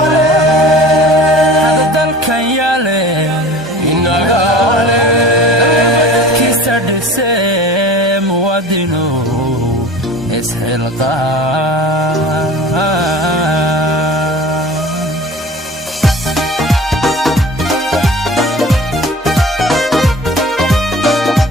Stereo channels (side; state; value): both; normal; correlation 0.41